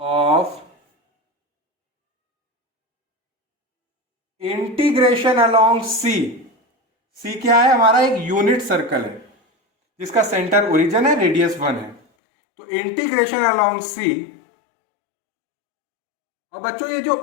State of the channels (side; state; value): right; drops out; at 12.0 s